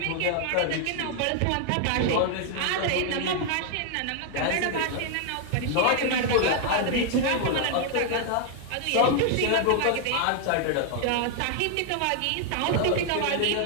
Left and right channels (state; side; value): different; both; correlation 0.00